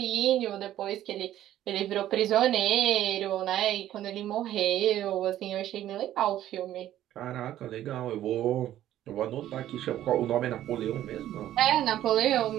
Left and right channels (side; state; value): left; quieter; 12.7 dB